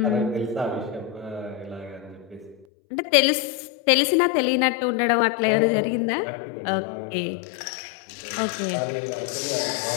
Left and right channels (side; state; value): right; drops out; at 2.7 s